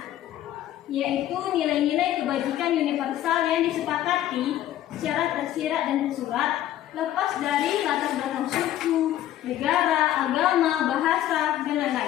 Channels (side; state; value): right; quieter; 12.6 dB